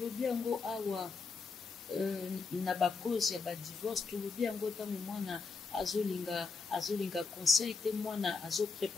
yango awa na ba cause ya ba divorce, tolobi yango tango mwana azolinga conseil te mwana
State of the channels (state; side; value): quieter; right; 4.5 dB